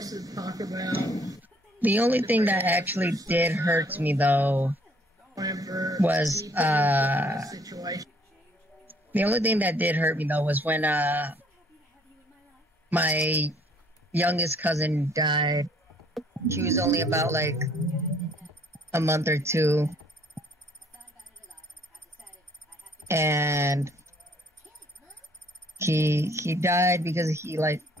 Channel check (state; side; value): normal; both; correlation 0.62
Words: to talk about. The only thing that actually did hurt me though was when my youngest cousin died. She was only about like a month or two, and he died because he like